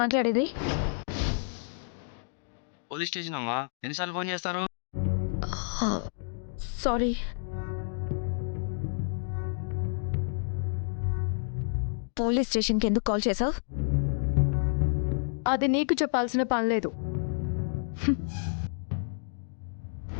పోలీస్ స్టేషన్ అమ్మా, ఎన్నిసార్లు ఫోన్ చేస్తారు? సారీ. పోలీస్ స్టేషన్కి ఎందుకు కాల్ చేసావు? అది నీకు చెప్పాల్సిన పని లేదు.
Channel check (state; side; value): silent; right; digital silence